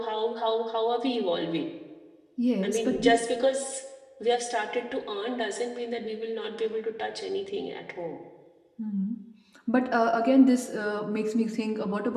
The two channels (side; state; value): both; identical; correlation 1.00